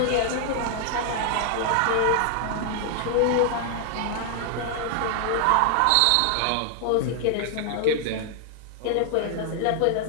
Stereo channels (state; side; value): different; both; correlation 0.00